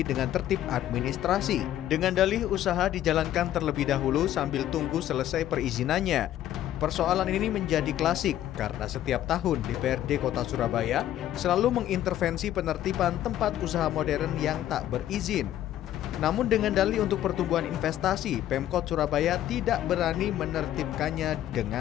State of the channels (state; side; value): quieter; right; 12.3 dB